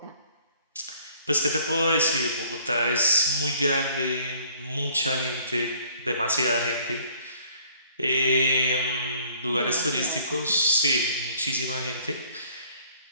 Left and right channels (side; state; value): both; inverted; correlation -0.58